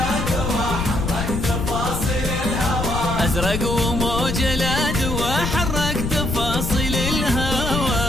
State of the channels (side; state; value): left; noise; rumble, 3 dB below the sound